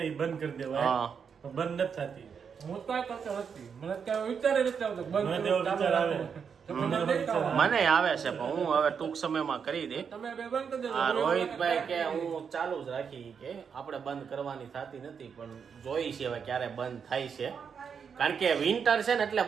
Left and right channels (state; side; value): quieter; left; 6.7 dB